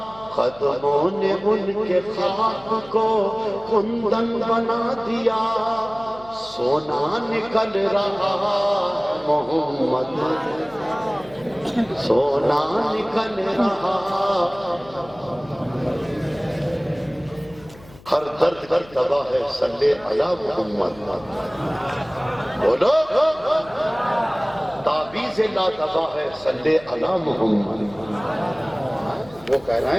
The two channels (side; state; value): left; noise; hum, 22 dB below the sound